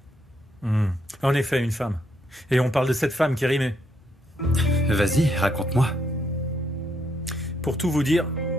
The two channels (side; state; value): both; normal; correlation 0.75